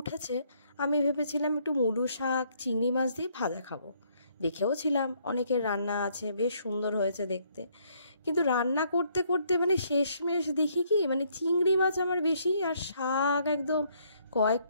উঠেছে, আমি ভেবেছিলাম একটু মূলো শাক চিংড়ি মাছ দিয়ে ভাজা খাবো। দেখেও ছিলাম অনেকের রান্না আছে, বেশ সুন্দর হয়েছে দেখতে। কিন্তু রান্না করতে করতে মানে শেষমেশ দেখি কি, মানে চিংড়ি মাছ আমার বেশি আর শাক একদম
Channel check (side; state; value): both; inverted; correlation -0.69